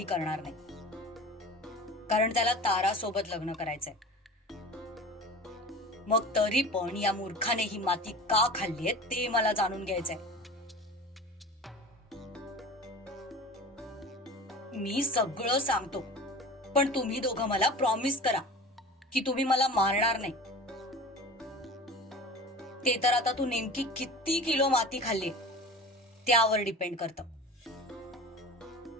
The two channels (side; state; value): both; normal; correlation 0.36